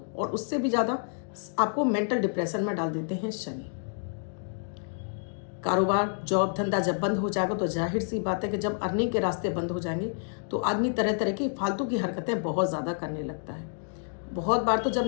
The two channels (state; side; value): silent; right; digital silence